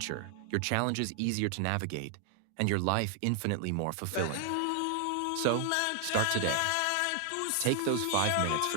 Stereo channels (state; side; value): different; both; correlation 0.00